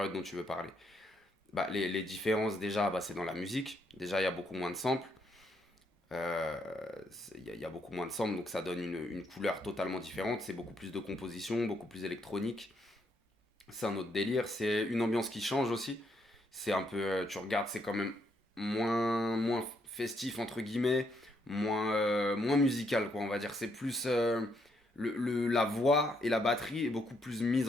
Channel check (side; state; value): both; normal; correlation 0.74